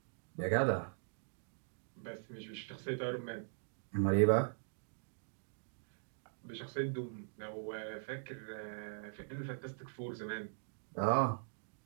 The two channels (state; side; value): silent; left; digital silence